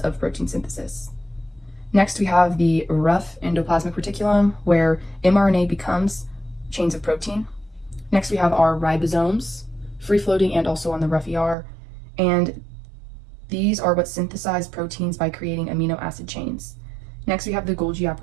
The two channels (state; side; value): drops out; left; at 11.6 s